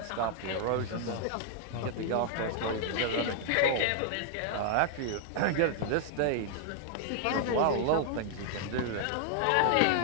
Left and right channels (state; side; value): different; both; correlation 0.00